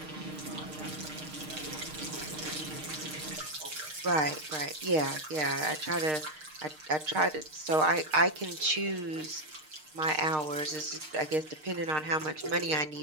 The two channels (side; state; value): left; late; 6.5 ms